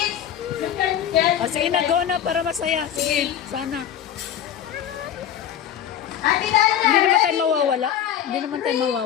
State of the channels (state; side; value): quieter; right; 10.0 dB